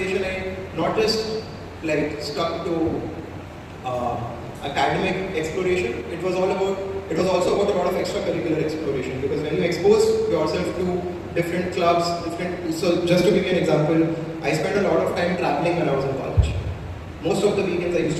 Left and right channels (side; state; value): both; identical; correlation 1.00